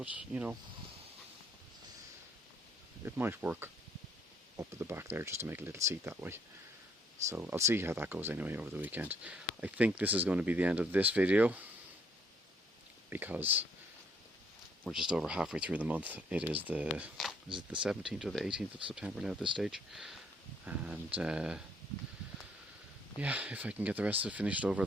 you know, it might work up at the back there just to make a little seat that way. So I'll see how that goes anyway over the weekend. I think this is going to be the end of this video, because we're just over halfway through the month. It is the 17th or the 18th of September now at this stage. And yeah, if I can get the rest of it finished over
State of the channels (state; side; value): normal; both; correlation 0.66